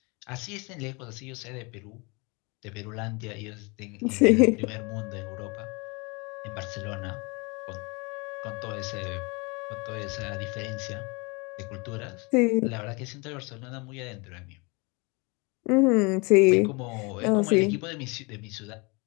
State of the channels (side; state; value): right; quieter; 28.9 dB